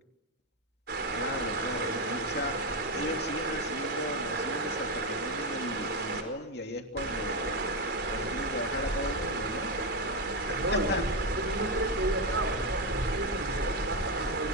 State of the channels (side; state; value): both; normal; correlation 0.09